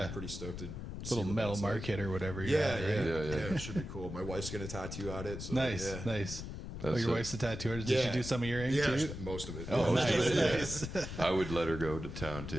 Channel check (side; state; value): left; noise; rumble, 8 dB below the sound